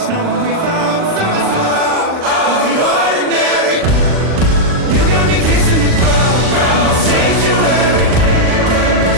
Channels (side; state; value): left; late; 39 ms